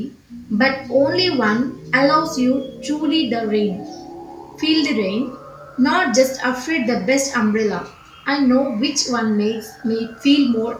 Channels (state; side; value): identical; both; correlation 1.00